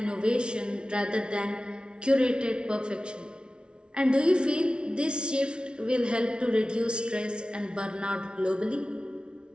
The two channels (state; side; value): late; left; 0.056 ms